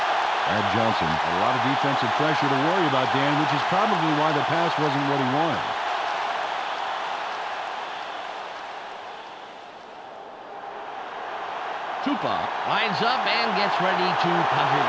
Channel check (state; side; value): identical; both; correlation 1.00